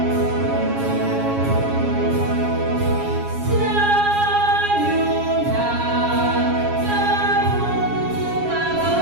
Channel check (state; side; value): late; left; 7.3 ms